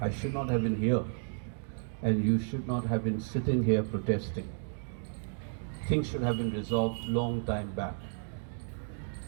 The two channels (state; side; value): silent; left; digital silence